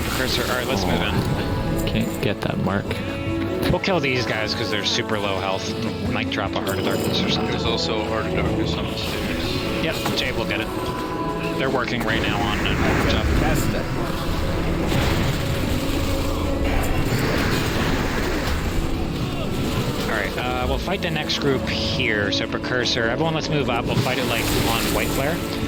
Precursor? Alright, let's move in. Can't get that mark. We'll kill these guys because they're super low health. Might drop a Heart of Darkness or something. There's also a Heart of Darkness on the stairs. Yep, Jay will get it. They're working right now on it. That's that. Alright, we'll fight the next group here. So Precursor, everyone let's move up. We'll fight it like on White Flare.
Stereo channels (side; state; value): both; identical; correlation 1.00